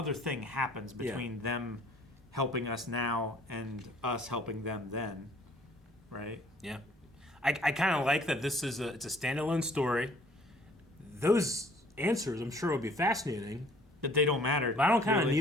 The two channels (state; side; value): normal; both; correlation 0.56